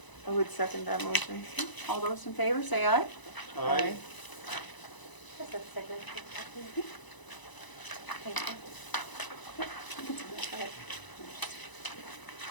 I would second that motion. All those in favor, say aye. Aye. That's a signature. Thank you.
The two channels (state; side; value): late; right; 1.0 ms